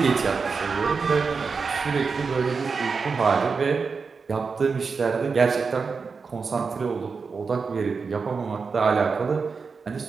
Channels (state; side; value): quieter; left; 5.0 dB